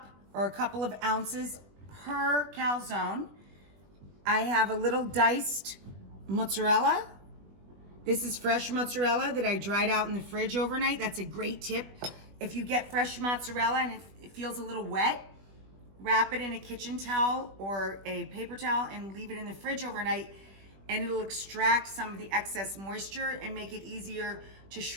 or a couple of ounces per calzone. I have a little diced mozzarella. This is fresh mozzarella that I dried out in the fridge overnight. That's a great tip. If you get fresh mozzarella and it feels a little wet, wrap it in a kitchen towel or a paper towel and leave it in the fridge overnight, and it'll extract some of the excess moisture and make it easier to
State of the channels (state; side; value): late; left; 20 ms